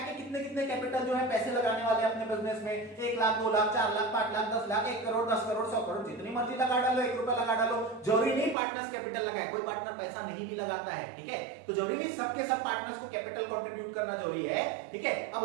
कितने कितने कैपिटल जो है पैसे लगाने वाले हैं अपने बिजनेस में, 1 लाख 2 लाख 4 लाख 5 लाख 10 लाख 1 करोड़ 10 करोड़ 100 करोड़ जितनी मर्जी लगा डालो, 1 रुपया लगा डालो, जरूरी नहीं पार्टनर्स कैपिटल लगाए, कोई पार्टनर पैसा नहीं भी लगाता है, ठीक है। तो जरूरी नहीं सबके सब पार्टनर्स को कैपिटल कंट्रीब्यूट करना जरूरी है, ठीक है। अब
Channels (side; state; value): left; drops out; at 8.6 s